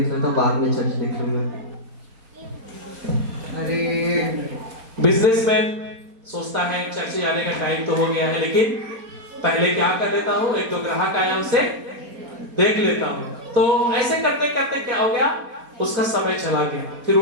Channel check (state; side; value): late; left; 4.2 ms